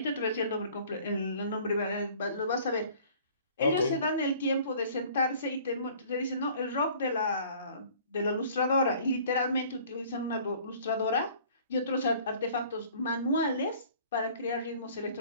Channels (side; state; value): both; inverted; correlation -0.52